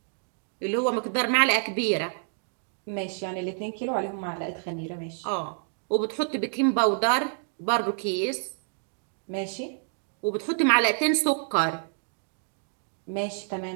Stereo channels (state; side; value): silent; left; digital silence